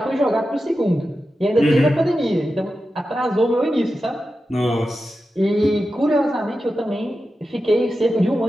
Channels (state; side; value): normal; both; correlation 0.91